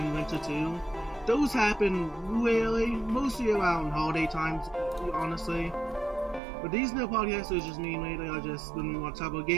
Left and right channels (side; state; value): left; drops out; at 6.4 s